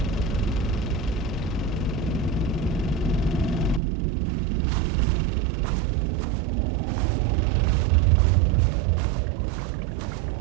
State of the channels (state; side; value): drops out; left; at 3.8 s